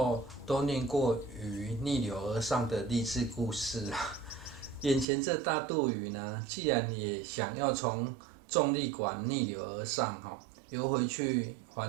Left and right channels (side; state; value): left; drops out; at 5.1 s